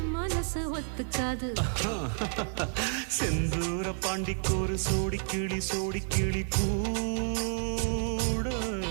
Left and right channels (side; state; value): left; silent; digital silence